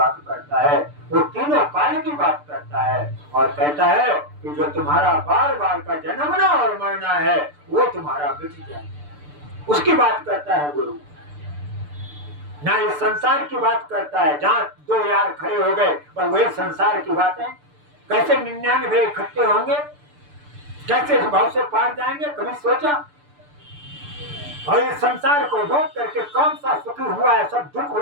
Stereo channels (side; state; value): left; late; 6.8 ms